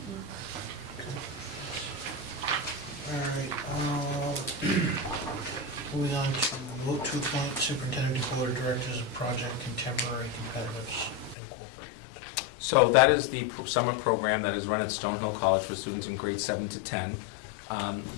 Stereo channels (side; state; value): right; drops out; at 11.4 s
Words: All right, moving on to vote to appoint superintendent to board of directors of Project Contemporary Competitives Incorporated. So that is the summer program that is run at Stonehill College for students in grades 7 to 10.